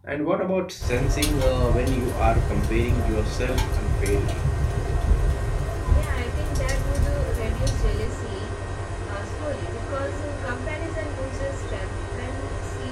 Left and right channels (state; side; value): identical; both; correlation 1.00